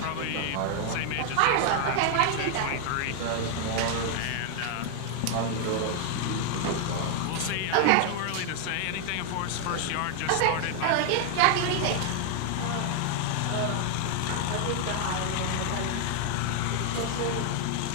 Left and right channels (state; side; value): different; both; correlation 0.00